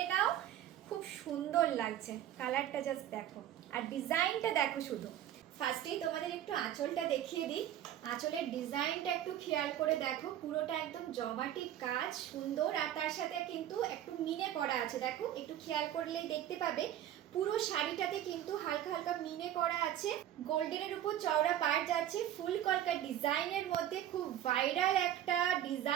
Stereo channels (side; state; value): left; quieter; 11.7 dB